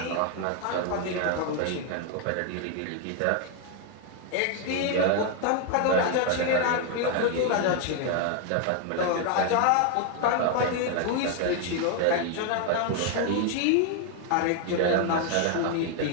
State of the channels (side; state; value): both; different; correlation 0.01